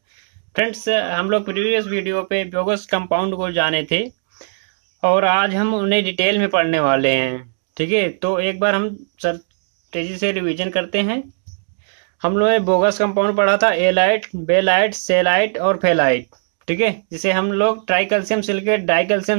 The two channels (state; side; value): silent; left; digital silence